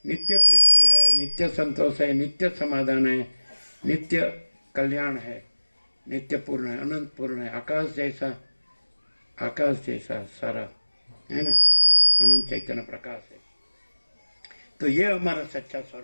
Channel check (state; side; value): inverted; both; correlation -1.00